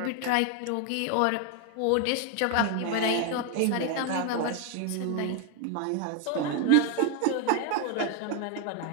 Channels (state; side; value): different; both; correlation 0.01